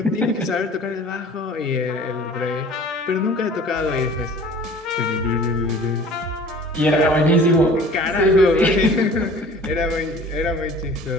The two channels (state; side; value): normal; both; correlation 0.46